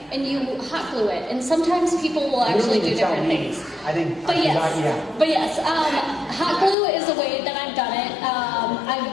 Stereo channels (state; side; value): drops out; right; at 6.8 s